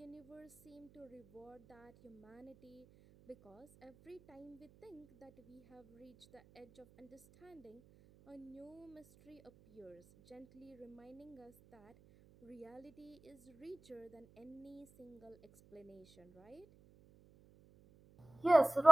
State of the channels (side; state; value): right; noise; hum, 24 dB below the sound